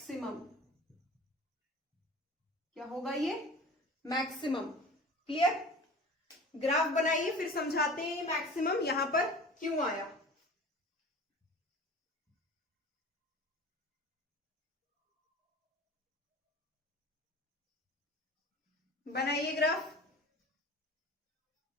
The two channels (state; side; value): normal; both; correlation 0.40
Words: क्या होगा ये, मैक्सिमम। क्लियर, ग्राफ बनाइए फिर समझाते हैं ये मैक्सिमम यहां पर क्यों आया। बनाइए ग्राफ।